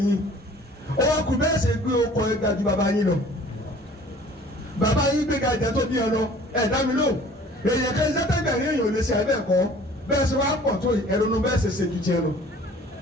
ó wá kú bẹ́ẹ̀ ṣe gbé ọkọ̀ ẹ̀ga ju bàbá yín lọ bàbá yín gbé ga ìjà tó bí ọ lọ ẹ̀ dá mi lò èèyàn kan sẹ́tẹ̀gbẹ̀rin èèyàn ò lè ṣe ẹ̀bẹ̀ kọ́ bẹ́ẹ̀ ṣe wá pọ̀ tó ẹ̀rọ̀nù bẹ́ẹ̀ ṣe ṣe ju tiẹ̀ lọ.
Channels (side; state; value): both; normal; correlation 0.50